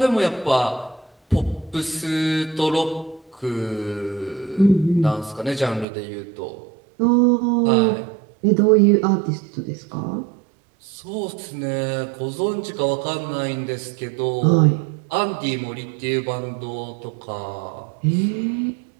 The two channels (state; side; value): drops out; left; at 5.9 s